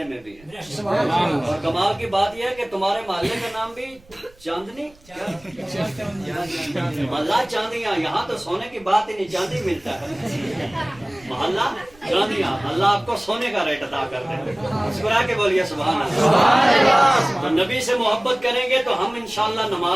میں بھی ہیں، اور کمال کی بات یہ ہے کہ تمہارے محلے کا نام بھی چاندنی محلہ چاندیاں۔ یہاں تو سونے کی بات ہی نہیں، چاندی ملتا ہے، محلہ چاندیاں۔ اللہ آپ کو سونے کا ریٹ عطا کر دے۔ مسکرا کے بولیے سبحان اللہ۔ تو نبی سے محبت کریں گے تو ہم انشاءاللہ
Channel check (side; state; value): right; noise; rumble, 27 dB below the sound